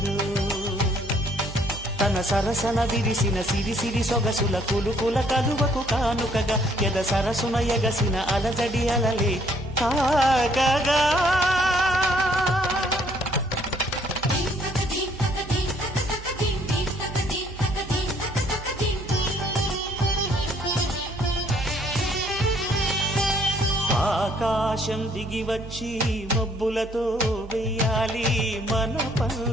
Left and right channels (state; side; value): normal; both; correlation 0.64